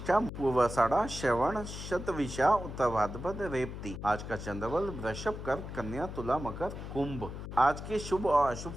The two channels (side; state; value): left; noise; hum, 9 dB below the sound